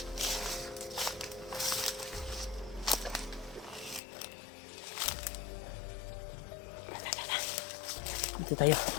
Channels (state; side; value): drops out; right; at 4.0 s